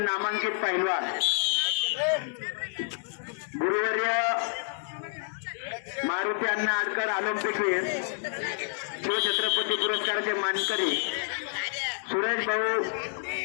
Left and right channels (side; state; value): right; silent; digital silence